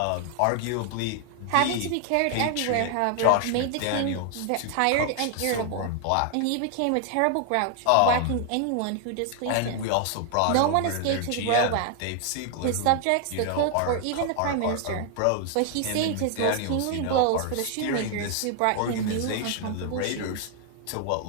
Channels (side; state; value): both; different; correlation 0.00